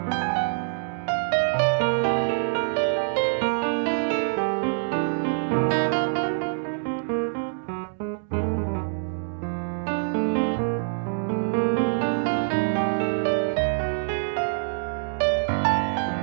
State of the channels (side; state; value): left; silent; digital silence